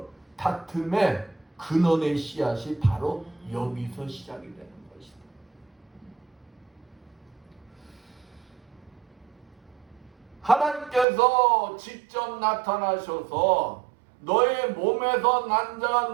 다툼의 근원의 씨앗이 바로 여기서 시작이 되는 것이다. 하나님께서 직접 나타나셔서 너의 몸에서 난 자가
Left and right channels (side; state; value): left; drops out; at 11.1 s